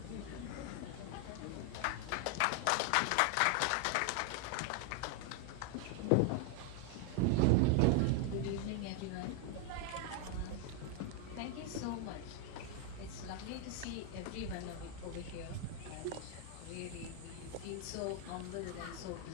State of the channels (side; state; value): both; different; correlation 0.01